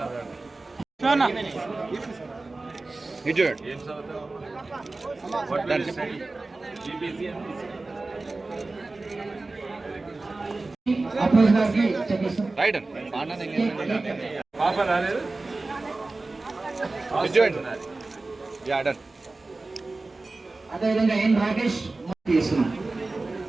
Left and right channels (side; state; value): left; quieter; 3.3 dB